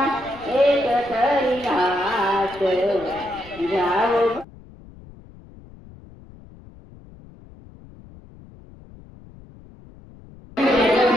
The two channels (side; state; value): left; noise; rumble, 21 dB below the sound